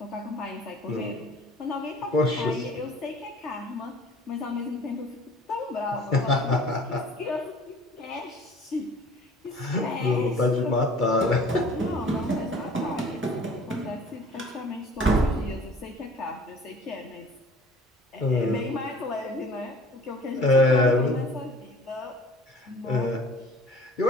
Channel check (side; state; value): both; normal; correlation 0.49